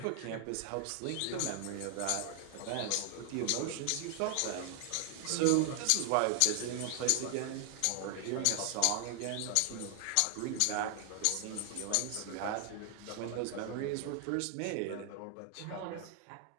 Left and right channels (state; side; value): different; both; correlation 0.00